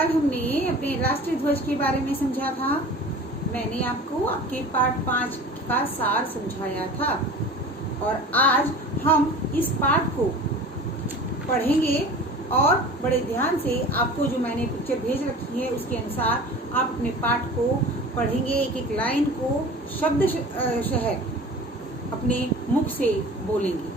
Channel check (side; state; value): both; normal; correlation 0.39